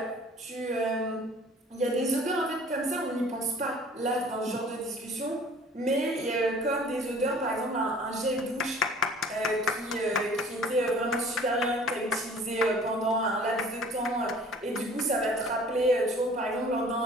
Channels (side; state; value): both; normal; correlation 0.50